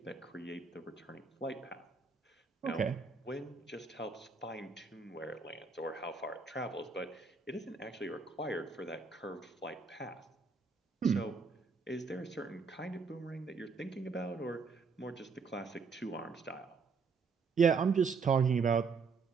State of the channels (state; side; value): quieter; left; 4.9 dB